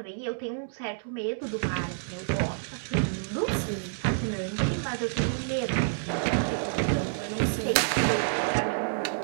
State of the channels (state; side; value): silent; left; digital silence